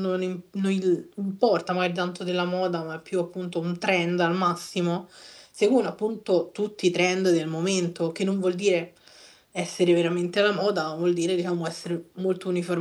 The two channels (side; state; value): both; identical; correlation 1.00